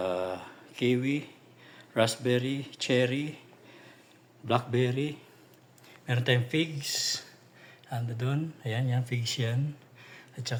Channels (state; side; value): identical; both; correlation 1.00